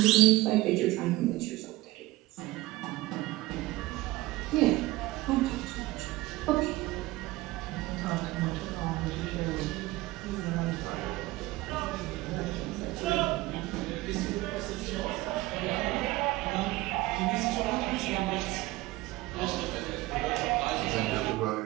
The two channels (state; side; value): quieter; left; 18.9 dB